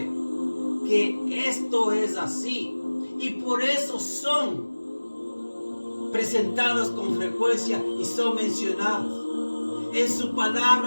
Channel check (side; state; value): both; inverted; correlation -1.00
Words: que esto es así y por eso son presentados con frecuencia y son mencionados. En su